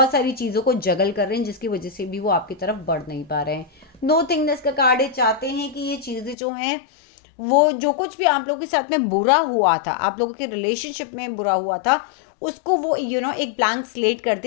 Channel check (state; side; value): drops out; right; at 6.4 s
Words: सारी चीज़ों को जगल कर रहे हैं, जिसकी वजह से भी वो आपकी तरफ बढ़ नहीं पा रहे हैं। नो थिंगनेस का कार्ड है, चाहते हैं कि ये चीज़ें जो हैं वो जो कुछ भी आप लोगों के साथ में बुरा हुआ था, आप लोगों के रिलेशनशिप में बुरा हुआ था, उसको वो एक ब्लैंक स्लेट कर